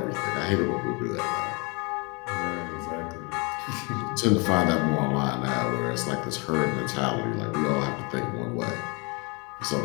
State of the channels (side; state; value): right; quieter; 30.7 dB